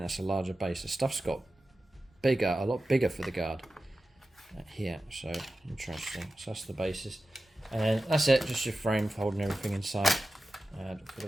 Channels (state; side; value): normal; both; correlation 0.94